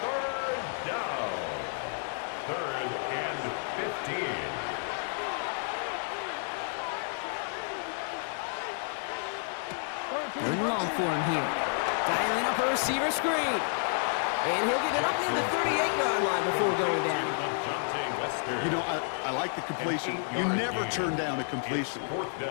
3rd down. 3rd and 15. Third and long for him here. Dialing up a receiver screen. And he'll get it up near the 38-yard line before going down. You know, I like the completion. You never turn down a completion.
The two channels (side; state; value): right; silent; 57 dB below the other